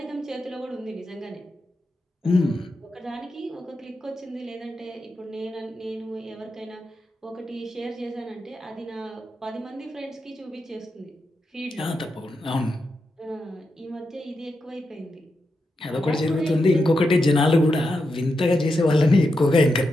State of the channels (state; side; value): normal; both; correlation 0.86